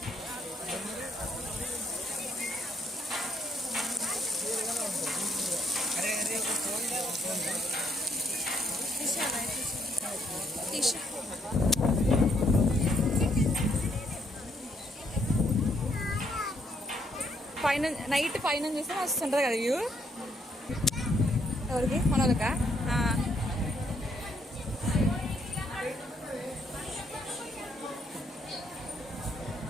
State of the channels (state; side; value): normal; both; correlation 0.71